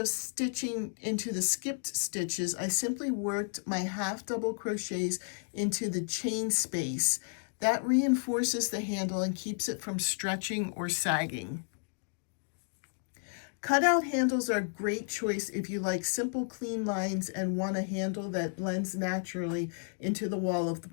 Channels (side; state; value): right; silent; digital silence